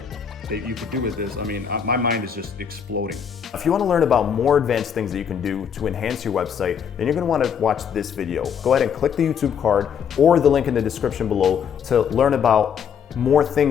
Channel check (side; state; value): right; quieter; 7.6 dB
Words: you could do with this. I mean, my mind is just exploding. If you want to learn about more advanced things that you can do to enhance your website, then you're going to want to watch this video. Go ahead and click the YouTube card or the link in the description below to learn about more